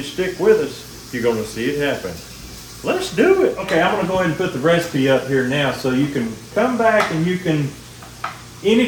stick with us, you're going to see it happen. Let's do it. Okay, I'm going to go ahead and put the recipe up here now so you can come back and you can,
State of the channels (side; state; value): both; identical; correlation 1.00